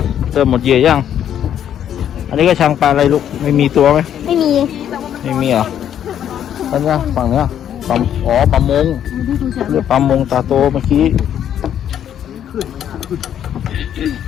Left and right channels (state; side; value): quieter; right; 9.9 dB